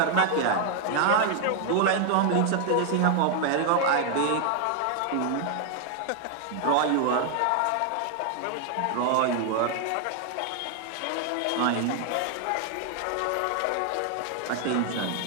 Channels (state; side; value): different; both; correlation 0.00